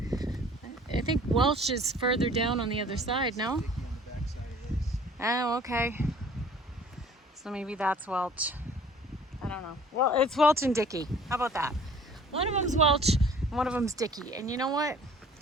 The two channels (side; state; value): both; normal; correlation 0.51